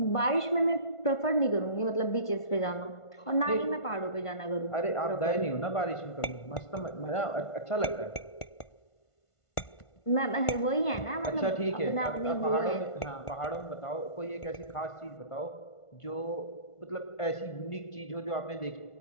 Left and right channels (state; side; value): late; right; 1.5 ms